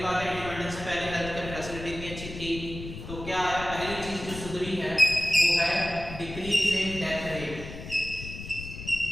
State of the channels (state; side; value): noise; left; rumble, 11 dB below the sound